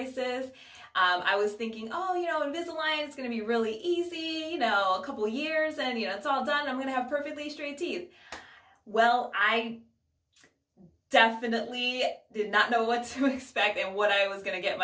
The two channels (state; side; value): identical; both; correlation 1.00